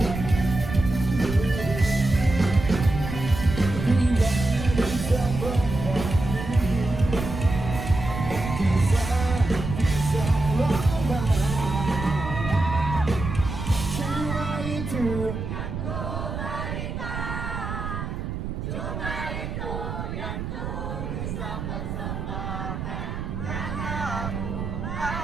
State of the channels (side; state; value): right; noise; rumble, 5 dB below the sound